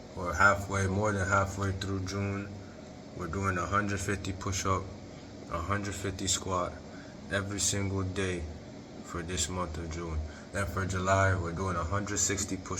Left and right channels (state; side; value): identical; both; correlation 1.00